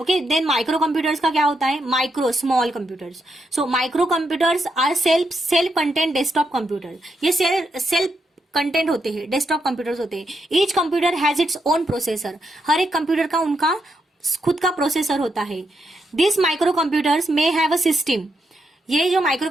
देन माइक्रो कंप्यूटर्स का क्या होता है, small computers. So micro computers are self content desktop computer, ये सेल्फ कंटेंट होते हैं, डेस्कटॉप कंप्यूटर्स होते हैं। Each computer has its own processor, हर एक कंप्यूटर का उनका खुद का प्रोसेसर होता है। This micro computers may have a system, ये जो माइक्रो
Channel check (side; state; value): both; normal; correlation 0.81